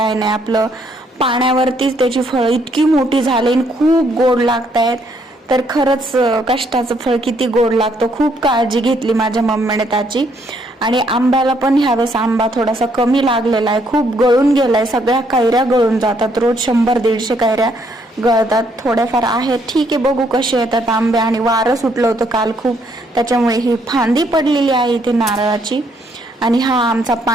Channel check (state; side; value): normal; both; correlation 0.70